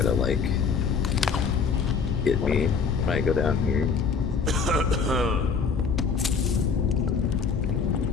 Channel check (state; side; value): quieter; right; 5.7 dB